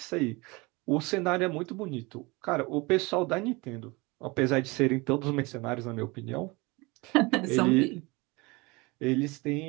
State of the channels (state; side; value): quieter; left; 25.0 dB